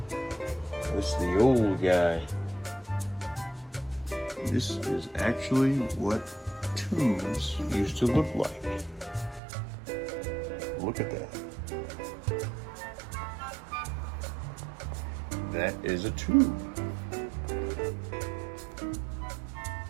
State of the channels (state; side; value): drops out; left; at 9.4 s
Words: This is the old guy. This is actually what tubes used to look like. Look at that. That is a tube.